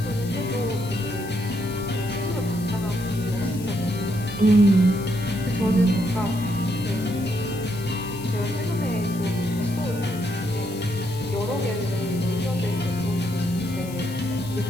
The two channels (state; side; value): noise; left; hiss, 16 dB below the sound